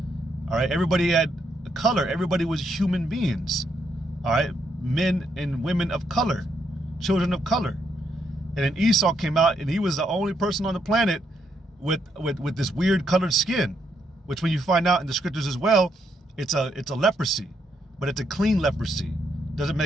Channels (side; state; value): both; normal; correlation 0.77